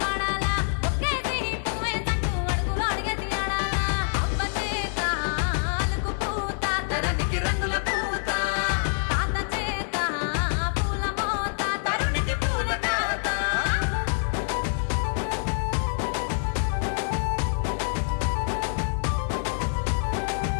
పాడాలా ఒక్కేసి పువ్వేసంటూ అడుగులు అడిగేసి ఆడాలా అవ్వ చేత అలుకు పూత ధరణికి రంగుల పూత తాత చేత పూల మోత తరుణికి పూల తాత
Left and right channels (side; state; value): right; silent; 61 dB below the other